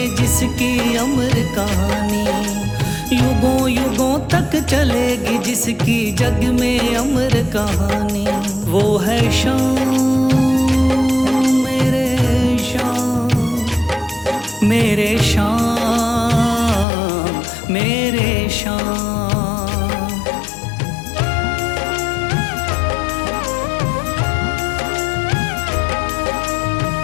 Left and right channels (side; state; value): right; drops out; at 16.9 s